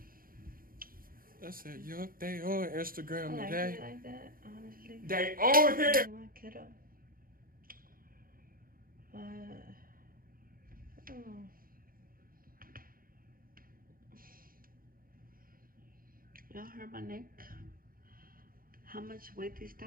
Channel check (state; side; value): late; left; 0.42 ms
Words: I said, yup, they on Instagram I like today. it like that, honestly. They on here. My kiddo. But, oh. Y'all heard my neck? How much weight these